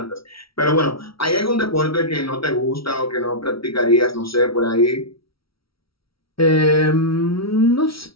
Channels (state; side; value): late; right; 0.75 ms